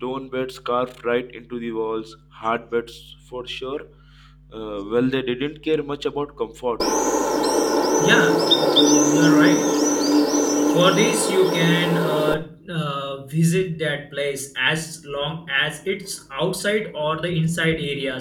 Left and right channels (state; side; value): identical; both; correlation 1.00